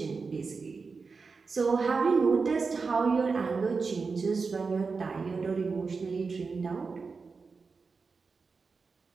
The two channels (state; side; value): quieter; left; 4.7 dB